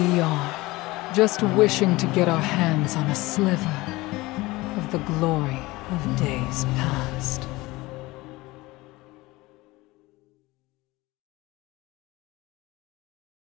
are, just wishing to get our hands on a sliver of the glory of days past.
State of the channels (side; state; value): right; quieter; 20.6 dB